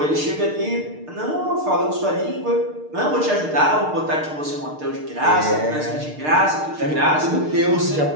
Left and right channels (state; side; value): late; left; 6.6 ms